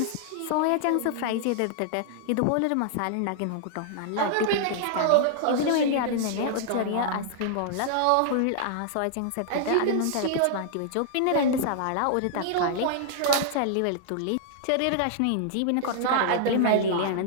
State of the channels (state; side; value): different; both; correlation -0.01